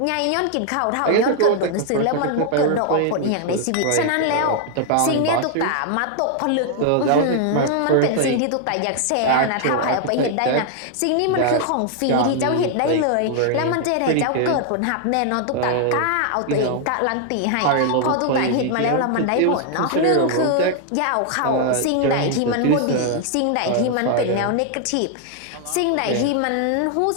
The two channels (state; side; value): different; both; correlation 0.00